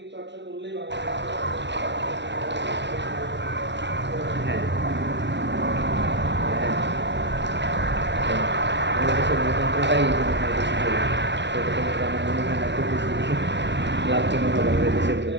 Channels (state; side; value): late; left; 0.51 ms